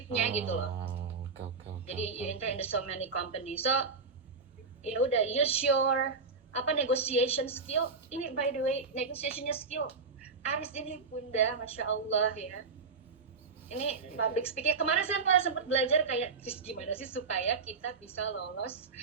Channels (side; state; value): left; quieter; 4.7 dB